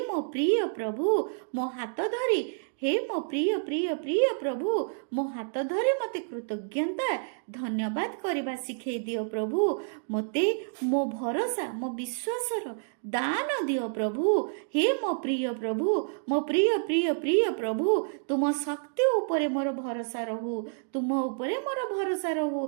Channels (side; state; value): left; silent; digital silence